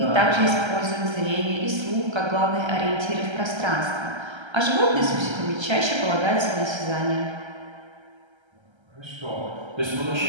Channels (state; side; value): late; left; 1.3 ms